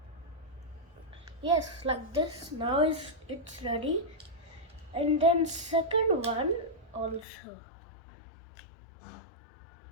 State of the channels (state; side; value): drops out; right; at 7.2 s